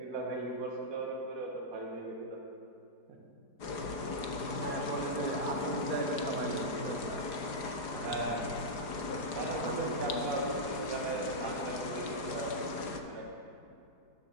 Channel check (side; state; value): right; late; 4.9 ms